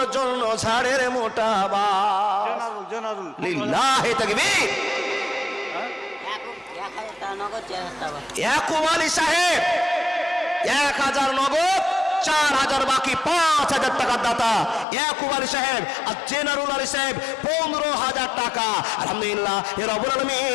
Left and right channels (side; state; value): right; drops out; at 14.9 s